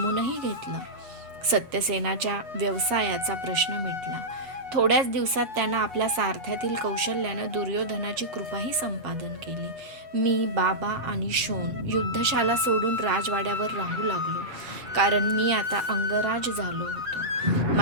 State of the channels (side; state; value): left; late; 8.2 ms